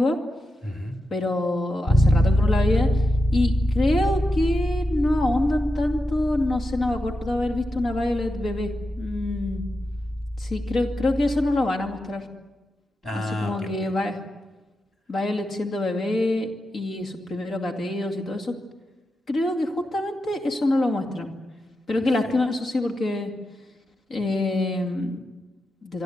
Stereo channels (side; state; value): both; normal; correlation 0.89